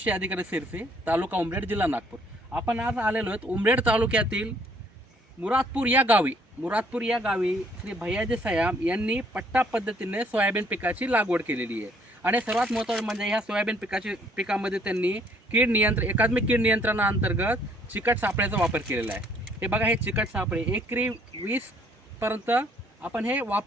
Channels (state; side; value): normal; both; correlation 0.63